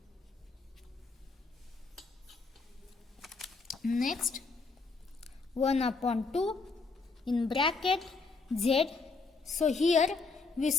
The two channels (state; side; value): quieter; right; 4.3 dB